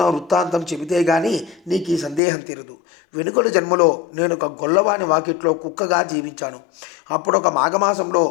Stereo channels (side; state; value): right; drops out; at 2.2 s